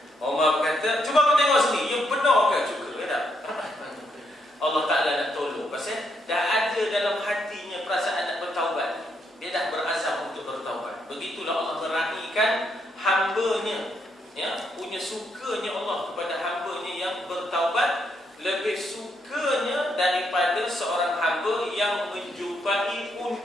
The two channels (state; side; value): normal; both; correlation 0.77